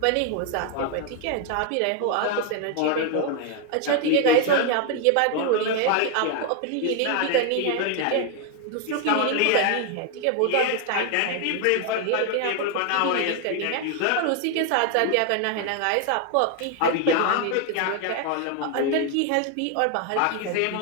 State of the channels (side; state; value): both; different; correlation 0.01